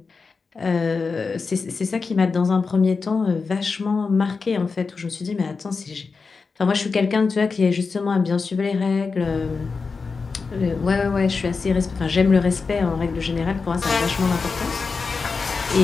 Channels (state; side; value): quieter; right; 4.7 dB